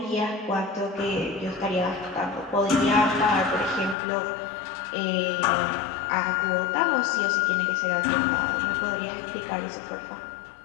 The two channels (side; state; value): right; drops out; at 4.0 s